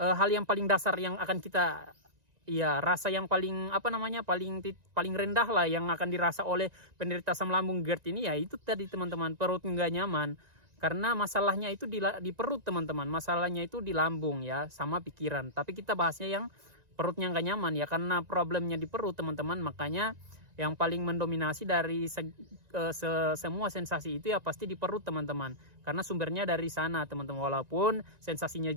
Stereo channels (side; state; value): left; late; 1.9 ms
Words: yang paling dasar yang akan kita ya rasa yang paling paling rendah lah yang akan dirasa oleh penderita asam lambung GERD ini ya itu tadi teman-teman, perut nggak nyaman. Karena masalahnya itu di perut teman-teman, masalahnya itu di lambung ya, sama pikiran. Tapi kita bahasnya yang perutnya nggak nyaman ya, karena problemnya di perut teman-teman. Makanya yang paling mendominasi dari semua sensasi itu ya pasti di perut teman-teman. Karena sumbernya dari sana teman-teman, walaupun sensasinya